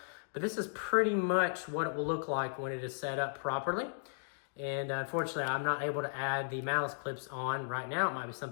but this is pretty much what it will look like when it is set up properly. And unfortunately, I'm not able to add the malice clips on right now. It might be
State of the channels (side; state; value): right; silent; digital silence